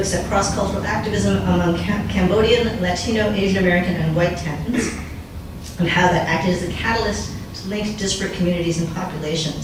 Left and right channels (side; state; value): both; identical; correlation 1.00